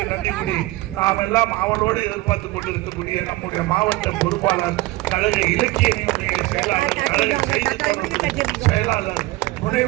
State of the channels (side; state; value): left; quieter; 19.7 dB